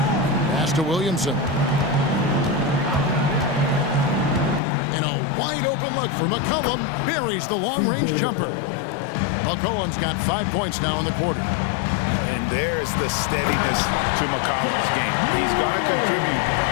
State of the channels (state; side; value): drops out; right; at 4.6 s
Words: Pass to Williamson. And a wide open look for McCollum. Buries the long-range jumper. McCollum's got 5 points now in the quarter. And there's the steadiness to McCollum's game. He's going to contribute